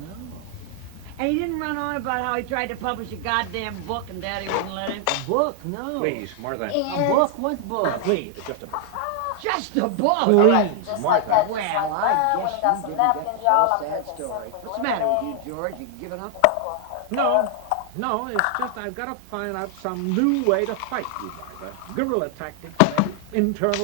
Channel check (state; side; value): different; both; correlation 0.00